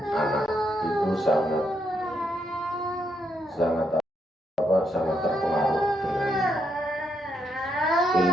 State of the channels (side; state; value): both; normal; correlation 0.78